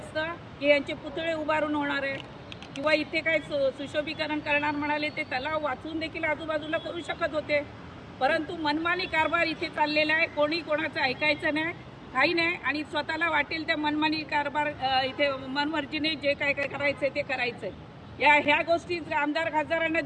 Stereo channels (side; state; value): both; identical; correlation 1.00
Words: की यांचे पुतळे उभारून होणार आहे किंवा इथे काय सुशोभीकरण करणार म्हणाले ते तलाव वाचून देखील आजूबाजूला करू शकत होते, परंतु मनमानी कारभार इथे चाललेला आहे. कोणी कोणाचं ऐकायचं नाही, काही नाही, आणि स्वतःला वाटेल त्या मनमानी कारभार इथे मनमर्जीने जे काय काय करायचं ते करायचं. ह्या गोष्टी आमदार खासदारांना